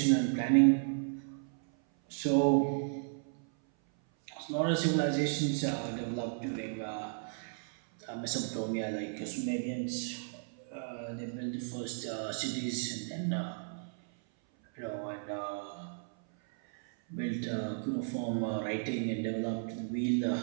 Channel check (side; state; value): left; silent; 55 dB below the other